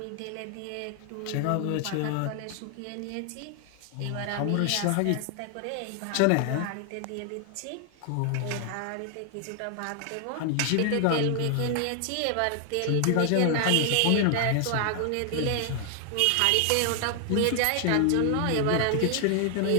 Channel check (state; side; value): different; both; correlation 0.00